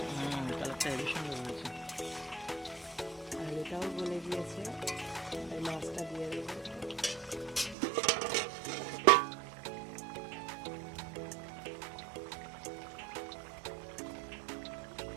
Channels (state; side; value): drops out; left; at 7.8 s